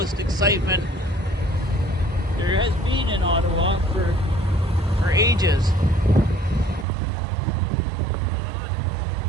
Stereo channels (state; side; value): drops out; left; at 6.9 s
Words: excitement there has been in Ottawa for ages.